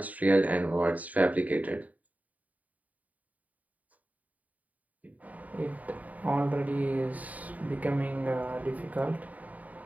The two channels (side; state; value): left; late; 0.073 ms